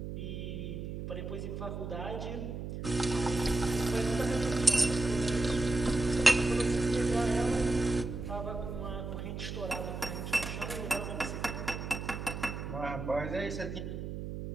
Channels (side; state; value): right; noise; hum, 6 dB below the sound